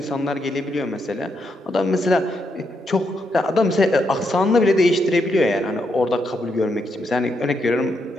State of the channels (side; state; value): both; normal; correlation 0.80